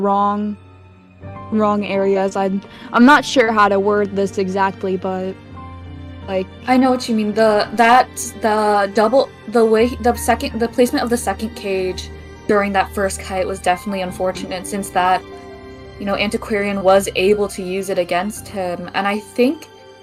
wrong areas. I'm not sure how to word this exactly, but like I know what you mean. The placement of the second cage during that first kite was definitely unfortunate since that Antiquarian was able to use it against him, and I think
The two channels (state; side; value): identical; both; correlation 1.00